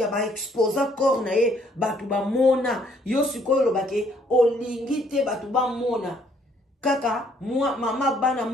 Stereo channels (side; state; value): both; normal; correlation 0.65